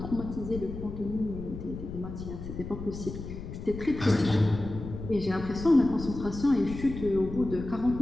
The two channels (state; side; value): noise; left; rumble, 9 dB below the sound